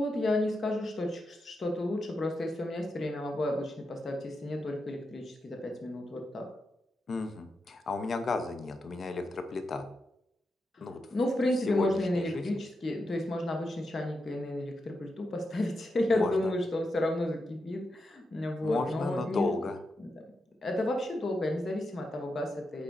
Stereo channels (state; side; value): normal; both; correlation 0.87